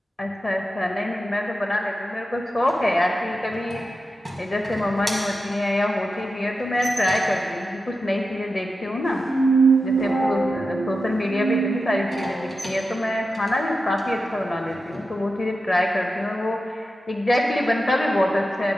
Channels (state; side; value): normal; both; correlation 0.90